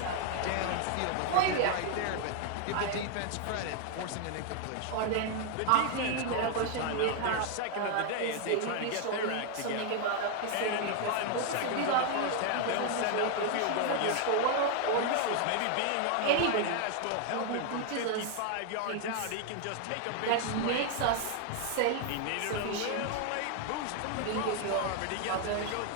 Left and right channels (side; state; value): both; different; correlation 0.00